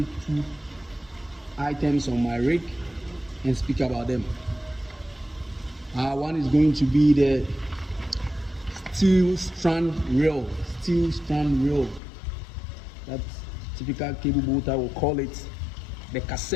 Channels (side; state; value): right; drops out; at 12.0 s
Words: two items on my rig and speak about them. One is going to be the steel strand reel. That typical cable boater will call it the